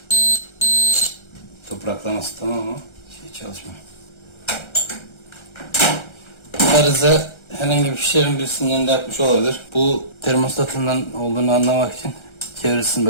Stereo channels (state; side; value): late; right; 1.3 ms